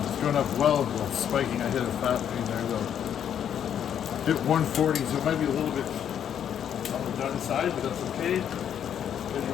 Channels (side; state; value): right; quieter; 9.2 dB